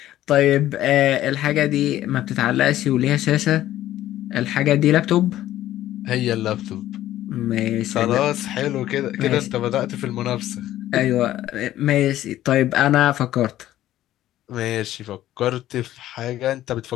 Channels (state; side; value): quieter; right; 13.6 dB